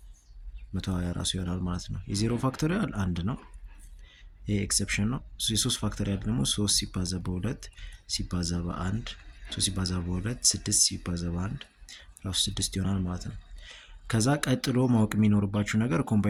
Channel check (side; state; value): both; identical; correlation 1.00